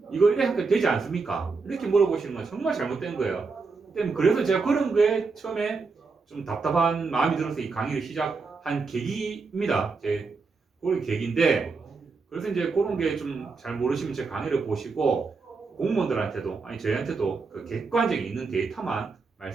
이거 이래 하니까 되지 않습니까? 이렇게 물어보시는 건 정말 잘못된 거예요. 그래서 제가 그런 거에 처음에 좀 답답한 마음이 들어서 이 강의를 시작한 계기입니다. 그런 계기인데 그래서 이제 그런 게 좀 잘 모르시면 제 강의를 보시고 공무원들한테도 아니 저희한테도 그 객관적인 있는 데이터만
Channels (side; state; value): left; quieter; 4.4 dB